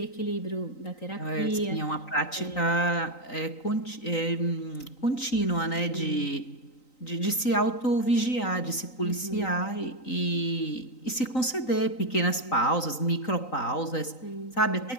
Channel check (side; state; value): right; late; 3.9 ms